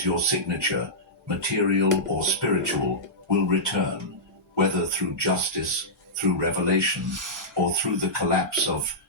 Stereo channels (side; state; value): both; normal; correlation -0.13